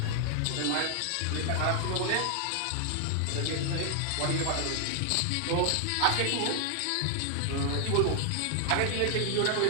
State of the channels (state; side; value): different; both; correlation 0.00